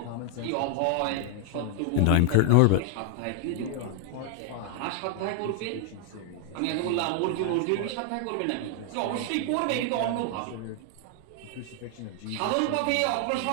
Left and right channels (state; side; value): different; both; correlation 0.00